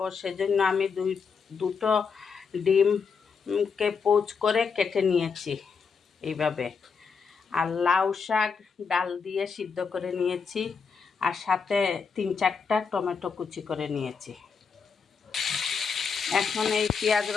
সেজন্য আমি দুটো ডিমকে পোচ করে কেটে নিয়েছি এইভাবে। আর লাউ শাক ডাল দিয়ে সিদ্ধ করে নিয়েছি, আর সাথে 3-4টা টমেটো কুচি করে নিয়েছি। এখন এই পেঁয়াজ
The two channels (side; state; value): right; quieter; 5.6 dB